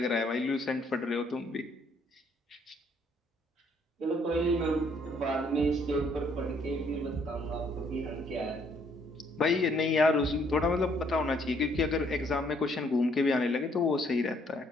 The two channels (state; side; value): normal; both; correlation 0.66